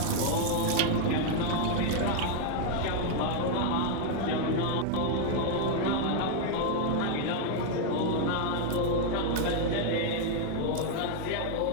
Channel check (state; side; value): different; both; correlation 0.00